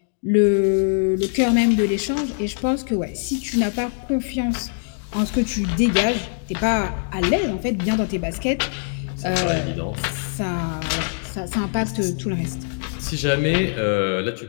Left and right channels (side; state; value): right; silent; digital silence